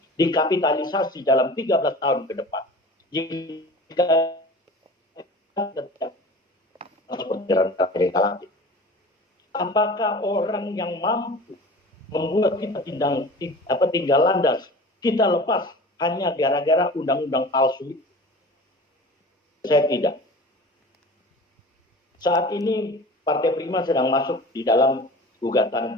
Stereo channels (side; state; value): both; normal; correlation 0.39